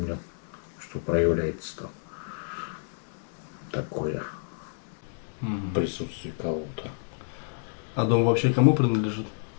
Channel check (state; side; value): silent; right; digital silence